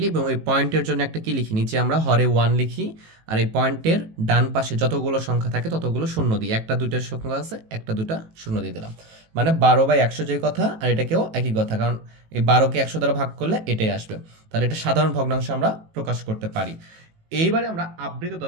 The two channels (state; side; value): late; left; 18 ms